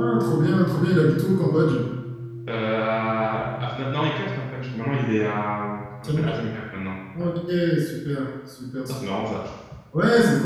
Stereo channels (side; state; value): both; identical; correlation 1.00